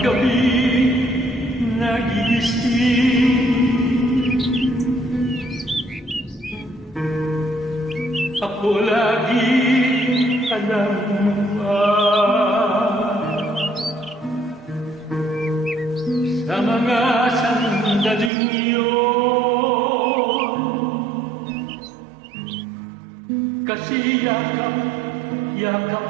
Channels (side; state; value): left; drops out; at 18.3 s